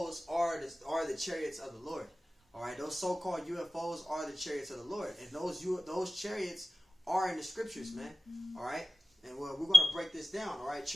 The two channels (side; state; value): both; normal; correlation 0.94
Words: are the chariots of the Lord. Alright, those so-called UFOs are the chariots of the Lord. And those chariots are in the scriptures, man. Alright? And we're going to break this down, alright?